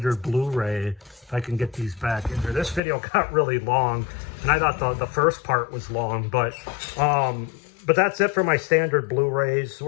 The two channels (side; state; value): right; drops out; at 2.8 s